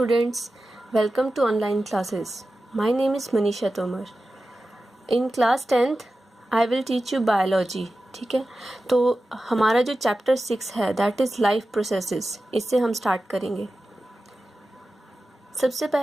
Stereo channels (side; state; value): both; normal; correlation 0.94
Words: welcome to online classes. My name is Manisha Tomar. In class 10th, I will teach you biology. ठीक है, तो हमारा जो chapter 6 है that is life processes, इससे हम start करेंगे। सबसे